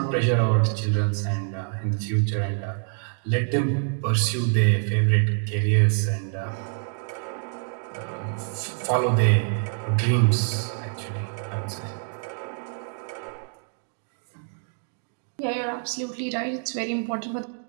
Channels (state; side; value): silent; left; 56 dB below the other